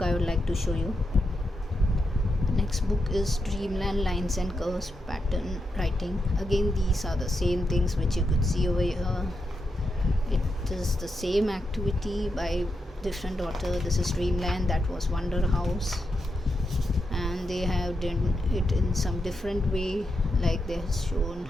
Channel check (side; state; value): both; normal; correlation 0.85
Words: I would like to show you. Next book is Dreamland Lines and Curves Pattern Writing. Again, these are the same things which you could see over here. It is the same activity by different author. This is Dreamland, that was Wonder House, and they have done it in some different way. Like they have shown